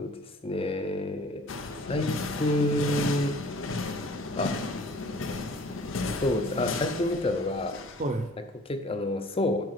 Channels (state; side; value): normal; both; correlation 0.50